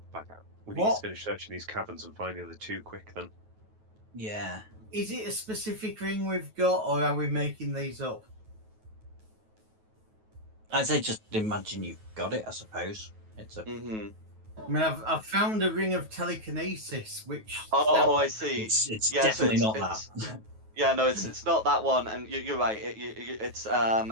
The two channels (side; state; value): left; late; 9.3 ms